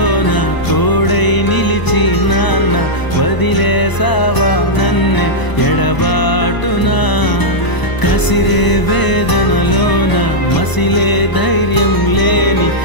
తోడై నిలిచి నాన్న వదిలేసావా నన్నే ఎడబాటునా కసిరే వేదనలోన మసిలే ధైర్యం లేని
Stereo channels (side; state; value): right; late; 1.0 ms